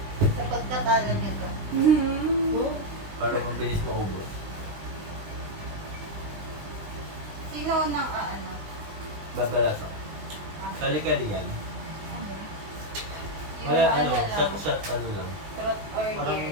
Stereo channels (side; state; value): left; late; 20 ms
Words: Sa pagkatalo niyo to. Para mabilis maubos. Sino nang ano? Babalas ako. Kali-kali yan. Wala, ano, shot, ano lang. Trot or Parang